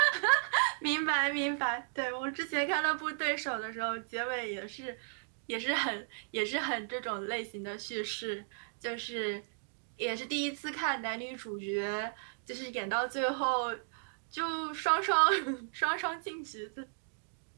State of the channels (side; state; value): left; silent; digital silence